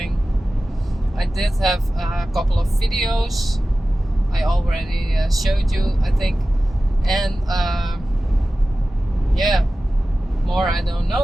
I did have a couple of videos I already showed you, I think, and more I don't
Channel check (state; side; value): normal; both; correlation 0.95